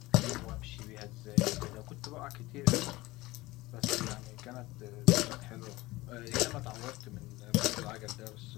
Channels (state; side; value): quieter; right; 19.8 dB